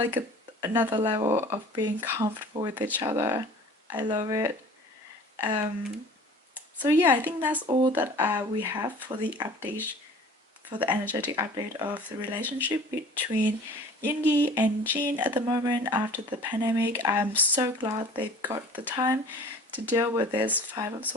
another level of being comfortable with each other. I love it. So yeah, I think that's all that we have for the update, for the energetic update of the relationship between Yoongi and Jin at the moment after the pandemic. I'm so glad they've got the time to deal with this Five of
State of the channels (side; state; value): both; normal; correlation 0.45